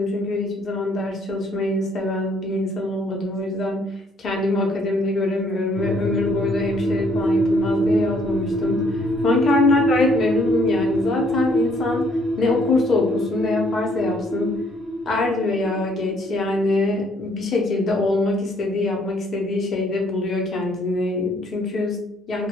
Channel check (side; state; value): both; normal; correlation 0.65